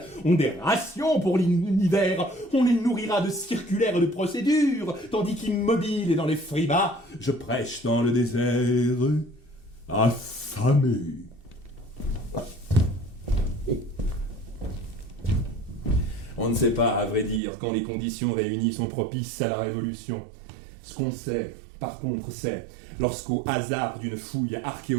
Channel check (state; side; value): drops out; left; at 17.4 s